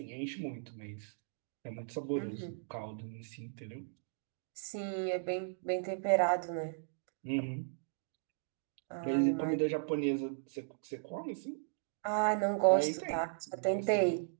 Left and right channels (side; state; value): left; silent; digital silence